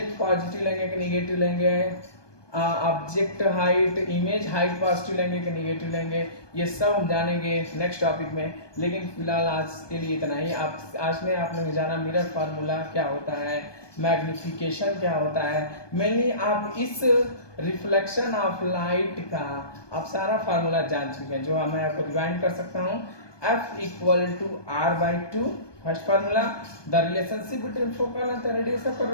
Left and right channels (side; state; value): right; late; 1.2 ms